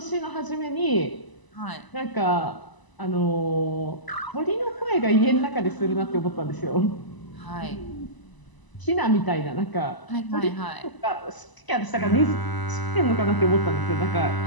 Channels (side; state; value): right; late; 1.0 ms